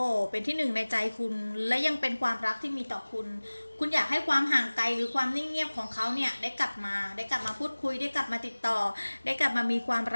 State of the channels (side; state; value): both; inverted; correlation -1.00